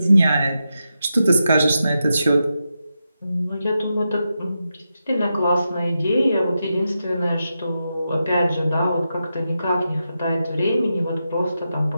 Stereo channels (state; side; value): inverted; both; correlation -0.88